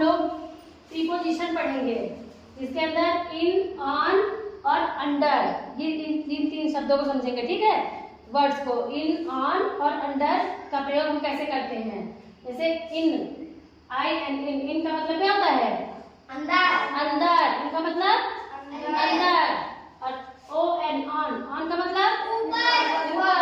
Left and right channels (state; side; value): identical; both; correlation 1.00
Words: प्रीपोजिशन पढ़ेंगे, इसके अंदर इन, ऑन और अंडर, ये तीन शब्दों को समझेंगे। ठीक है, वर्ड्स को इन, ऑन और अंडर का प्रयोग हम कैसे करते हैं। जैसे इन, आई एंड इन का मतलब क्या होता है? अंदर। अंदर, इनका मतलब अंदर। और ओ एंड ऑन का मतलब ऊपर।